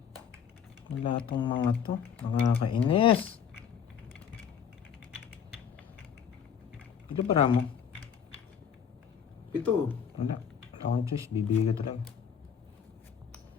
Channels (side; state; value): right; quieter; 7.6 dB